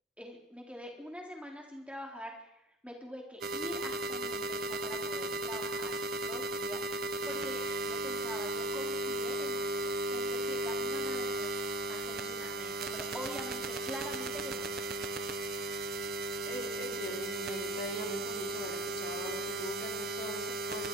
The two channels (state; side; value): normal; both; correlation 0.41